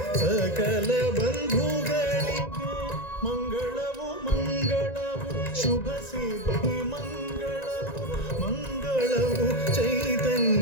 ಸಕಲ ಬಂಧುಗಳಿಗೆ ಮಂಗಳವು ಮಂಗಳವು ಶುಭ ಸಿದ್ಧಿ ಮಂಗಳವು ಮಂಗಳವು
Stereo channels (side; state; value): right; late; 1.9 ms